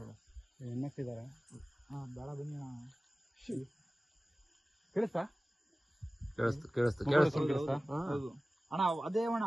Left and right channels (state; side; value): normal; both; correlation 0.97